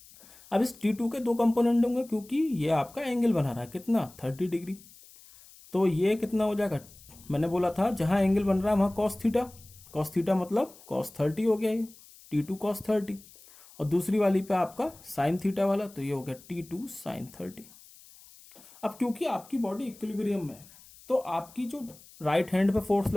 अब इस T2 के दो कंपोनेंट होंगे, क्योंकि ये आपका एंगल बना रहा है कितना 30 डिग्री, तो ये कितना हो जाएगा, मैंने बोला था जहां एंगल बन रहा है वहां cos थीटा मतलब cos 30 हो गया, ये T2 cos 30, और दूसरी वाली पे आपका sin थीटा वाला, तो ये हो गया T2 sin 30। अब क्योंकि आपकी बॉडी इक्विलिब्रियम में है, तो आपकी जो राइट हैंड पे फोर्स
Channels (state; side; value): noise; left; hiss, 23 dB below the sound